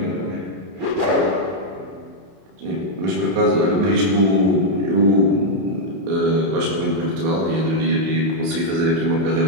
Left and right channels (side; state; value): left; late; 31 ms